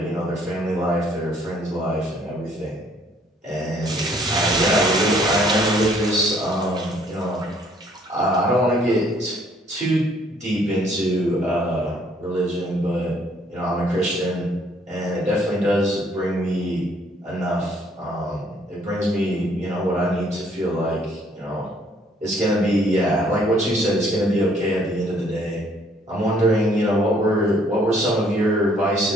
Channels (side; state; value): both; normal; correlation 0.63